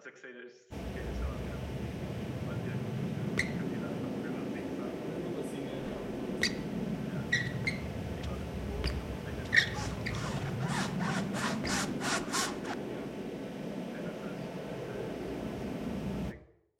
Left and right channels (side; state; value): both; identical; correlation 1.00